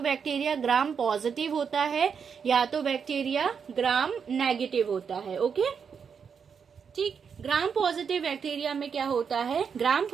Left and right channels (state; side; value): quieter; left; 6.6 dB